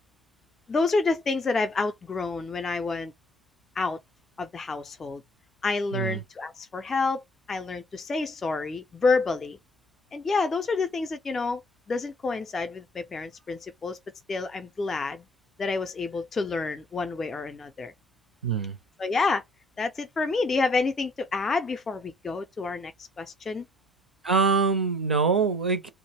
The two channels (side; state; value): both; normal; correlation 0.61